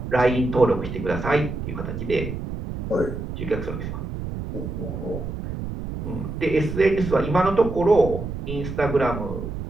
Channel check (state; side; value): noise; right; rumble, 6 dB below the sound